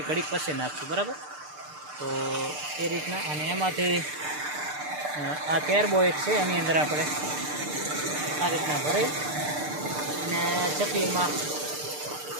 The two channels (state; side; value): late; left; 6.7 ms